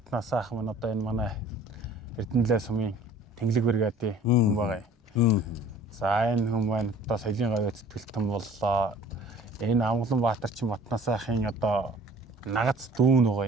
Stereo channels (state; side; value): normal; both; correlation 0.50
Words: сайхан маань одоо энэ манай Эрдэнэлээ сумын тэнглэг бригадын хүн байгаа юм. За энэ хүн маань одоо соёлын гавьяа зүтгэлтэн боллоо. Энэ Амгаланбаатар чинь Батнаас сайхын одоо нагац дүүн байгаа